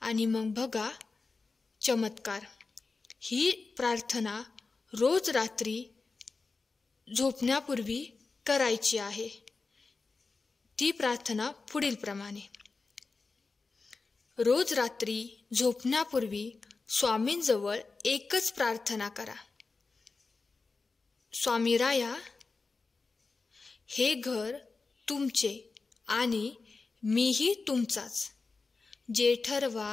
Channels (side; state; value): right; quieter; 4.1 dB